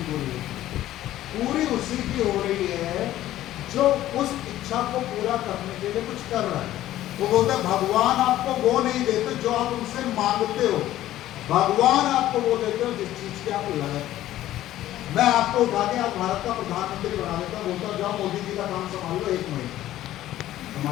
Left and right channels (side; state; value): right; quieter; 13.9 dB